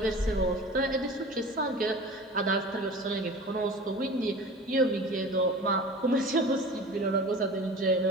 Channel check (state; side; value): normal; both; correlation 0.38